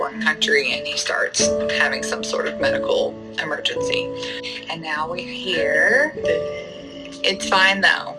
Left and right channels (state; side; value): identical; both; correlation 1.00